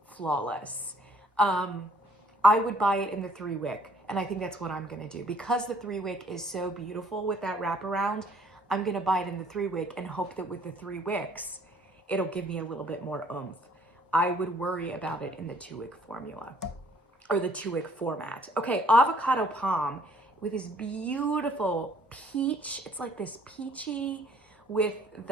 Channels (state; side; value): normal; both; correlation 0.60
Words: flawless. I would buy it in the 3-wick, and I think that's what I'm gonna do. Because the 3-wick is so beautiful with that wraparound, I'm gonna buy it in the 3-wick and hope that with the 3 wicks, it'll give me a little bit more oomph. I would worry about it in the 2-wick formula, or the 2-wick format. Okay, Avocado Palm with this beautiful peach. It's like this peachy with